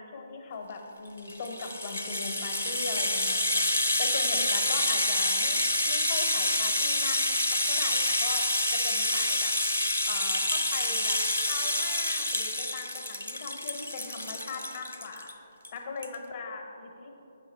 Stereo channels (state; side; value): inverted; both; correlation -0.65